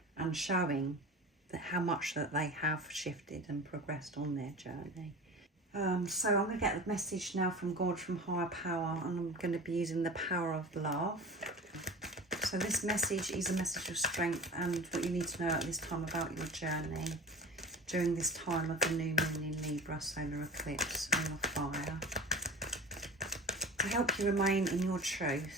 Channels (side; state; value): both; normal; correlation 0.36